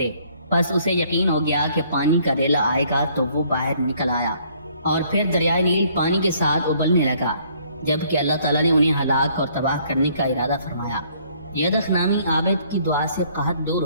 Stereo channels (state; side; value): inverted; both; correlation -0.62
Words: پس اسے یقین ہو گیا کہ پانی کا ریلا آئے گا تو وہ باہر نکل آیا اور پھر دریائے نیل پانی کے ساتھ ابلنے لگا۔ جبکہ اللہ تعالیٰ نے انہیں ہلاک اور تباہ کرنے کا ارادہ فرمایا۔ یدخ نامی عابد کی دعا سے قحط دور